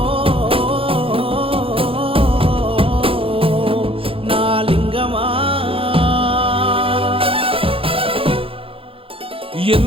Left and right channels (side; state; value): left; late; 0.27 ms